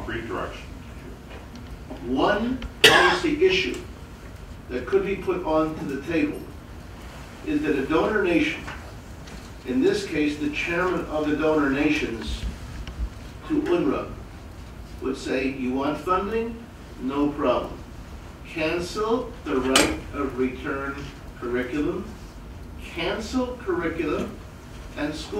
direction? One policy issue that could be put onto the table is that a donor nation, in this case the chairman of the donor nations to UNRWA, would say, you want funding? No problem. Cancel the right of return curriculum, cancel curriculum and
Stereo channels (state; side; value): identical; both; correlation 1.00